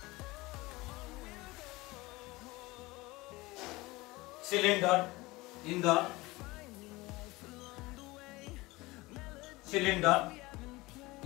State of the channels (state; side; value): quieter; right; 21.4 dB